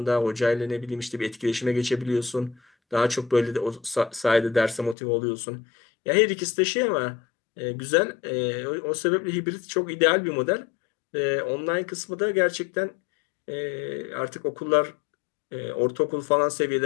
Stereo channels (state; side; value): drops out; right; at 5.0 s